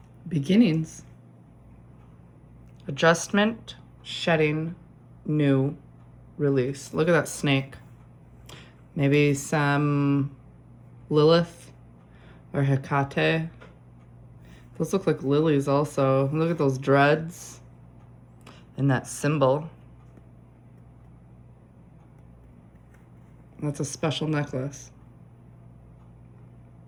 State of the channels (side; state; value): both; identical; correlation 1.00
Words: Beginnings. Adjustment, shedding, new, release. Look at that snake. Maybe some Lilith or Hecate. Those look like lilies also. Look at those dreads and that symbol. That's a special necklace.